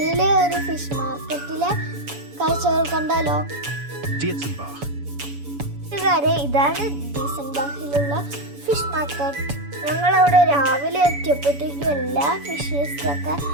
ഒരു ഫിഷ് മാർക്കറ്റിലെ കാഴ്ചകൾ കണ്ടാലോ? കൂട്ടുകാരെ, ഇതാണ് ഡീസൻബാഹിലുള്ള ഫിഷ് മാർക്കറ്റ്. ഞങ്ങളവിടെ രാവിലെ എത്തിയപ്പോഴത്തേക്കും എല്ലാ ഫിഷസൊക്കെ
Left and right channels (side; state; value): left; late; 7.0 ms